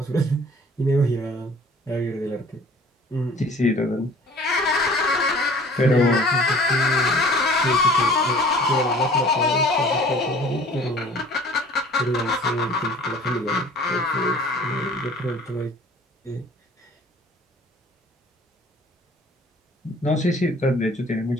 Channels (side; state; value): both; normal; correlation 0.49